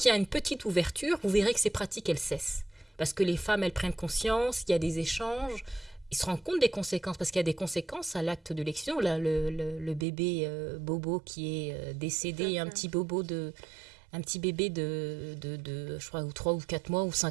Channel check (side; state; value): left; drops out; at 10.1 s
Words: y a une petite ouverture, vous verrez que ces pratiques, elles cessent. Parce que les femmes, elles prennent conscience, il y a des échanges, ils se rendent compte des conséquences, parce qu'il y a des conséquences à l'acte de l'excision. Là, le bébé Bobo qui est décédé, un petit bébé de je crois, 3 ou 4 mois ou